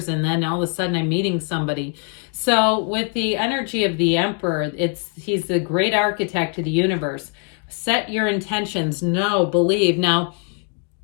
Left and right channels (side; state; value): right; quieter; 39.9 dB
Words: And then all of a sudden I'm meeting somebody. So with the energy of the Emperor, he's the great architect of the universe. Set your intentions, know, believe. Now,